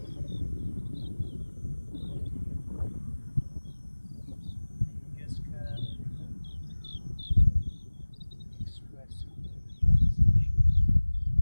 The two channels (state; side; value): inverted; both; correlation -1.00